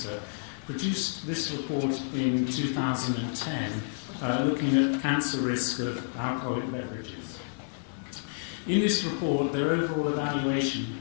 produced this report in 2010 looking at cancer risk of alcoholic beverages. In this report, their overall evaluation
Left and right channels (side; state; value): right; silent; digital silence